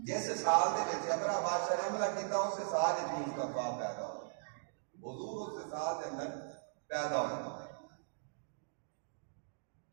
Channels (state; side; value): silent; left; digital silence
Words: سال دے وچ ابرا بادشاہ نے حملہ کیتا اس سال وچ مصطفیٰ پیدا ہوا حضور اس سال دے اندر پیدا ہوا